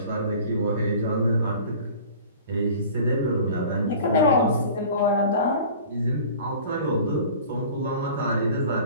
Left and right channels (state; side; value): inverted; both; correlation -0.43